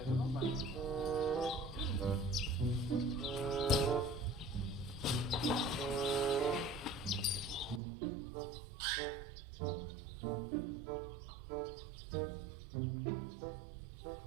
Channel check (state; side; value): drops out; left; at 7.8 s